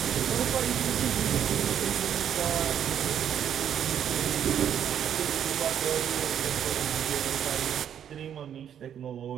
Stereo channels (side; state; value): left; quieter; 9.3 dB